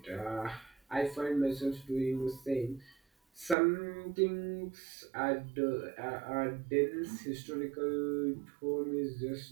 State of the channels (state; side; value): drops out; left; at 3.6 s